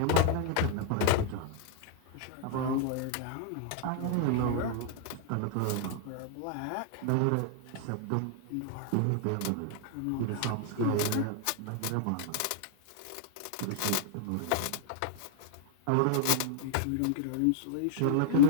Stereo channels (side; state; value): both; different; correlation -0.01